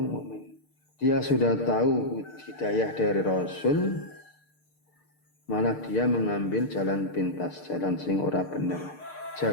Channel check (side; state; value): right; late; 6.6 ms